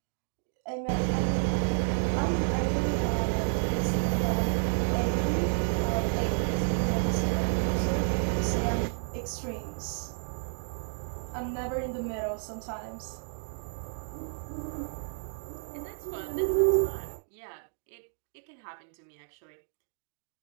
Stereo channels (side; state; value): left; silent; 57 dB below the other